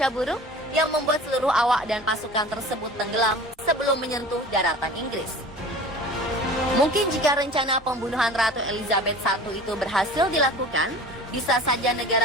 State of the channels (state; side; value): normal; both; correlation 0.40